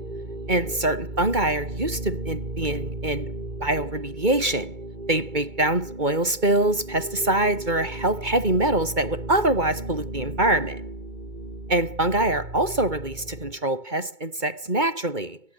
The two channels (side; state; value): left; late; 2.2 ms